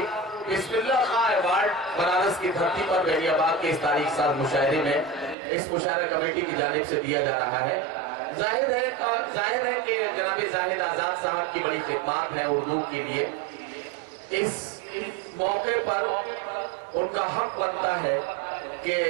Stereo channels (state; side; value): drops out; left; at 5.4 s